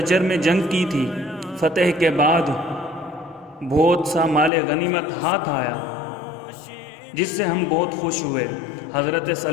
میں جنگ کی تھی، فتح کے بعد بہت سا مال غنیمت ہاتھ آیا جس سے ہم بہت خوش ہوئے۔ حضرت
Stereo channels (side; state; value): right; drops out; at 4.5 s